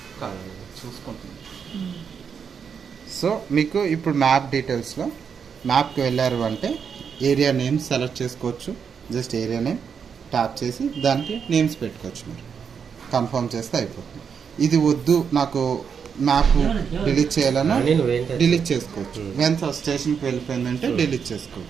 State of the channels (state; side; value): quieter; left; 6.7 dB